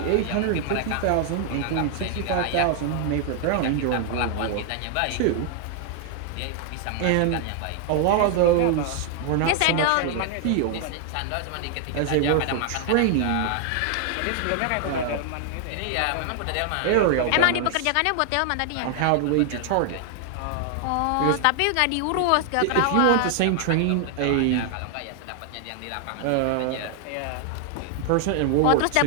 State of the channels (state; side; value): different; both; correlation 0.00